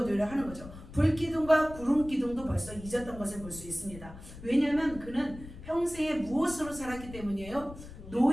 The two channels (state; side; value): noise; left; rumble, 15 dB below the sound